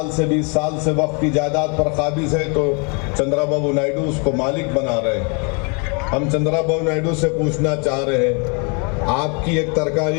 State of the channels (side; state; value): right; quieter; 34.4 dB